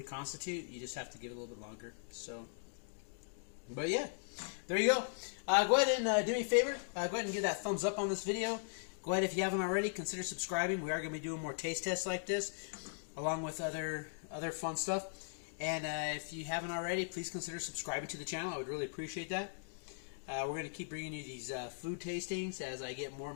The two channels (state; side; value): silent; right; digital silence